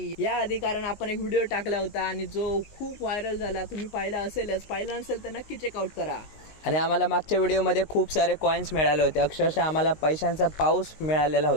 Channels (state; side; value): late; right; 19 ms